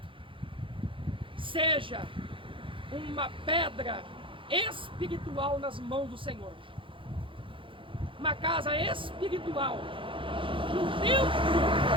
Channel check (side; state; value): left; late; 0.25 ms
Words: seja uma pedra espiritual nas mãos do Senhor, uma casa espiritual, um templo